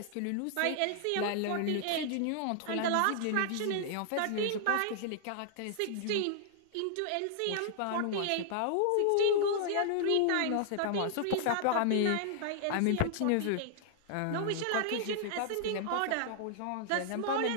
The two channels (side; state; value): both; different; correlation -0.01